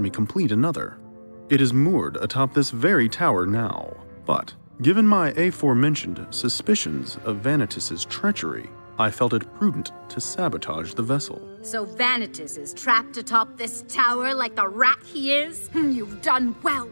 complete another. It is moored atop this very tower now. But, given my aforementioned suspicions of Vanitas' treachery, I felt it prudent to sabotage the vessel. So Vanitas is trapped atop this tower like the rat he is? You've done well,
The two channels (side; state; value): both; inverted; correlation -1.00